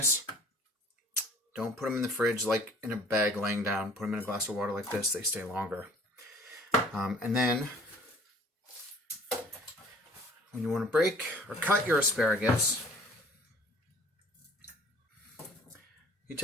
don't put them in the fridge like in a bag laying down. Put them in a glass of water like this. They stay longer. And then when you want to break or cut your asparagus, you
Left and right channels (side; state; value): both; normal; correlation 0.52